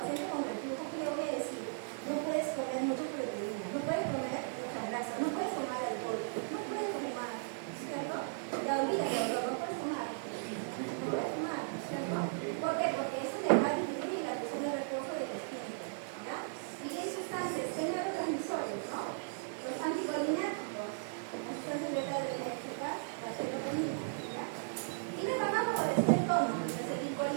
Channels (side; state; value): left; silent; digital silence